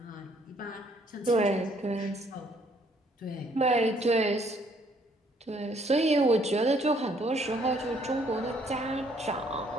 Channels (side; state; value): both; normal; correlation 0.65